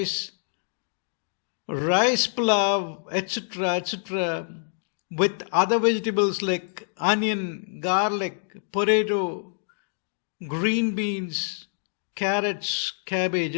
pilaf, etc., with other vegetables like onion, garlic, potato, green beans, carrots, cabbage,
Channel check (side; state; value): right; silent; digital silence